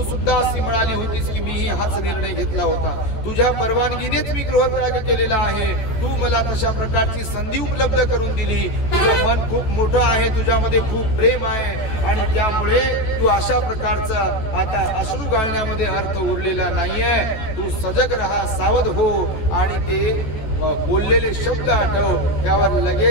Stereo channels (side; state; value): right; late; 14 ms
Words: सुद्धा अशी म्हणाली होतीस की मीही हाच निर्णय घेतला होता. तुझ्या परवानगीनेच मी गृहत्याग केलेला आहे. तू मला तशा प्रकारची संधी उपलब्ध करून दिली. तुझं मन खूप मोठं आहे, तुझ्यामध्ये खूप प्रेम आहे आणि त्यामुळे तू अशा प्रकारचा आता अश्रू गाळण्यामध्ये अर्थ उरलेला नाहीये. तू सजग राहा, सावध हो आणि ते बोललेले शब्द आठव. त्यावर